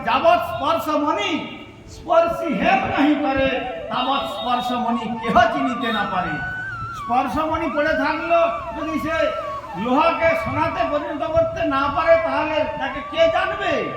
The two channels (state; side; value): identical; both; correlation 1.00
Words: যাবৎ স্পর্শমণি স্পর্শী হেম নাহি করে, তাবৎ স্পর্শমণি কেহ চিনিতে না পারে। স্পর্শমণি পড়ে থাকলো, যদি সে লোহাকে সোনাতে পরিণত করতে না পারে, তাহলে তাকে কে জানবে?